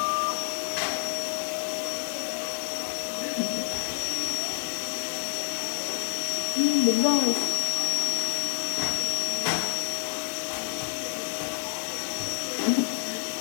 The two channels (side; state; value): right; silent; digital silence